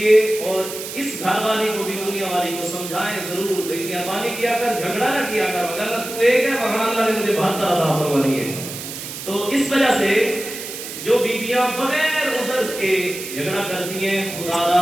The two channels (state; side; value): noise; right; hiss, 9 dB below the sound